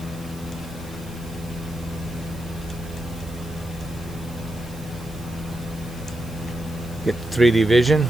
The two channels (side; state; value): right; noise; hiss, 20 dB below the sound